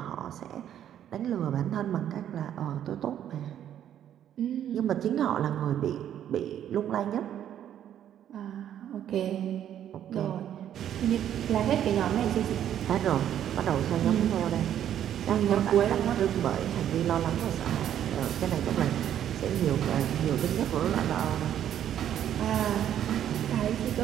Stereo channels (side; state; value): left; quieter; 10.4 dB